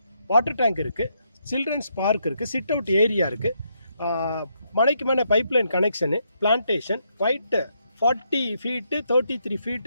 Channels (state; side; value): inverted; both; correlation -0.77